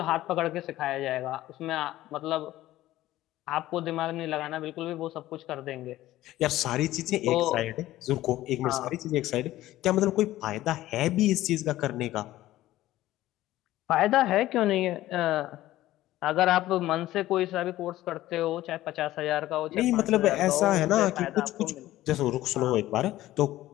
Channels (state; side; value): quieter; right; 15.4 dB